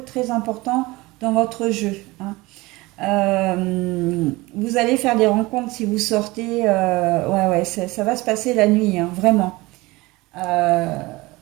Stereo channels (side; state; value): left; quieter; 21.6 dB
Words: très important dans votre jeu, hein. Vous allez faire des rencontres si vous sortez. Ouais, ouais, ça va se passer la nuit, hein, vraiment. Euh,